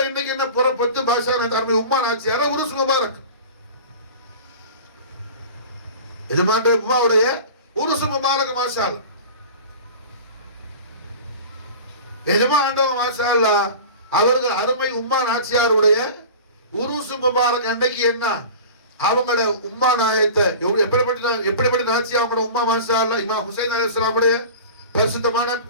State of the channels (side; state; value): both; inverted; correlation -0.37